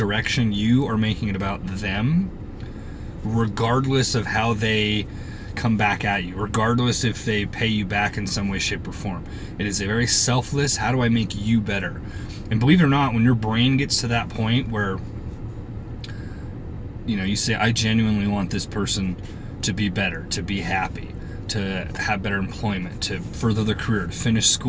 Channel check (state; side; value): identical; both; correlation 1.00